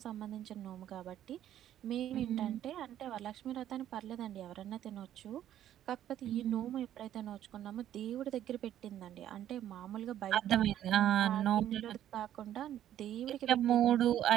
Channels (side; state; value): left; quieter; 11.5 dB